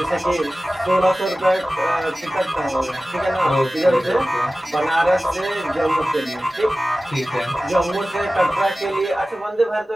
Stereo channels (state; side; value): normal; both; correlation 0.96